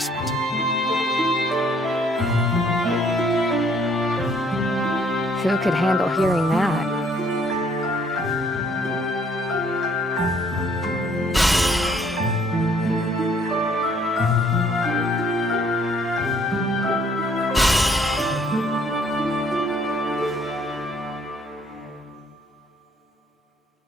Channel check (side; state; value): both; normal; correlation 0.63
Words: Who could handle hearing that?